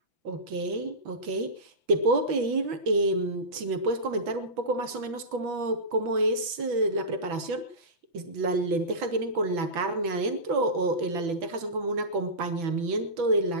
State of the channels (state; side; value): late; left; 6.0 ms